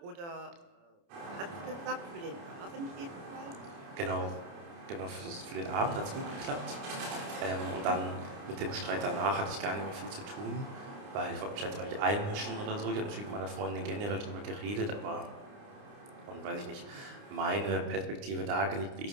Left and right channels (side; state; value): left; late; 29 ms